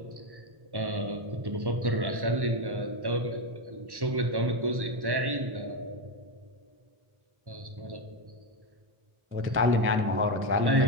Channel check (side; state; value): left; late; 1.1 ms